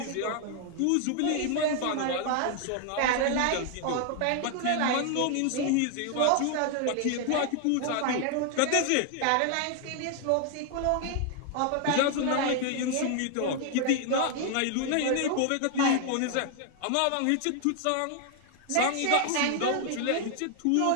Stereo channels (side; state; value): both; different; correlation 0.00